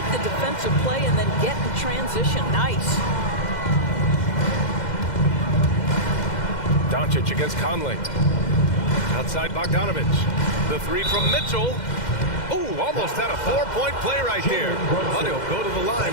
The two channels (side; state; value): right; late; 2.1 ms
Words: the defensive play and then get in transition. Nice. Doncic against Conley. Outside Bogdanovich. The 3 from Mitchell. Ooh, almost had a 4-point play right there. But he'll go to the line